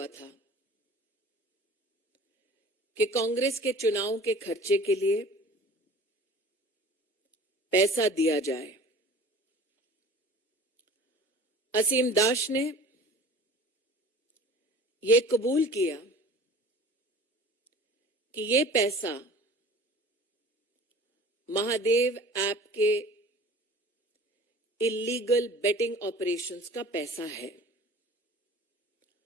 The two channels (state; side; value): normal; both; correlation 0.44